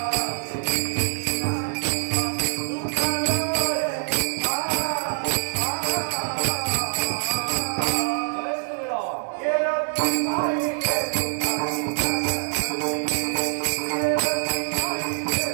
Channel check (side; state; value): left; silent; 62 dB below the other